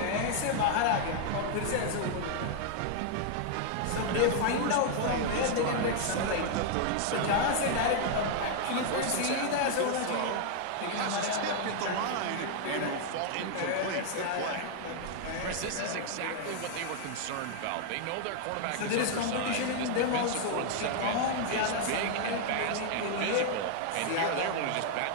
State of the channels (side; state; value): both; different; correlation 0.00